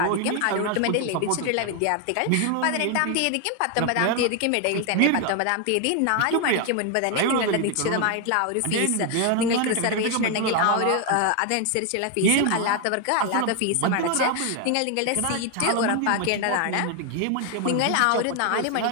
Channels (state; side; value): different; both; correlation 0.01